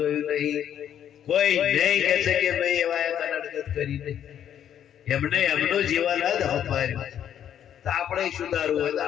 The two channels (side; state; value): right; quieter; 9.8 dB